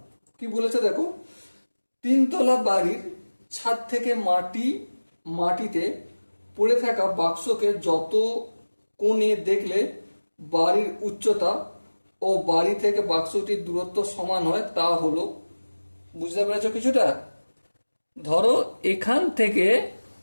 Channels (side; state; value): both; inverted; correlation -1.00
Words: কি বলেছে দেখো, তিনতলা বাড়ির ছাদ থেকে মাটিতে পড়ে থাকা বাক্সকে যত কোণে দেখলে বাড়ির উচ্চতা ও বাড়ি থেকে বাক্সটির দূরত্ব সমান হয় তা হলো। বুঝতে পেরেছো কিছুটা? ধরো এখান থেকে